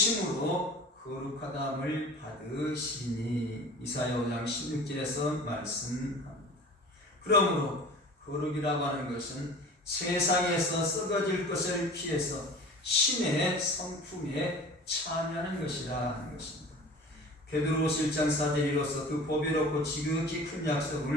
거룩하다함을 받으시니 이사야 5장 16절에서 말씀합니다. 그러므로 거룩이라고 하는 것은 세상에서 썩어질 것을 피해서 신의 성품에 참여하는 것이라 하는 것입니다. 베드로후서 1장 4절 이로써 그 보배롭고 지극히 큰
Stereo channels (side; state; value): both; normal; correlation 0.40